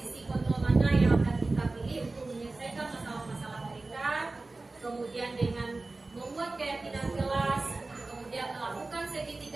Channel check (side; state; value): left; quieter; 3.3 dB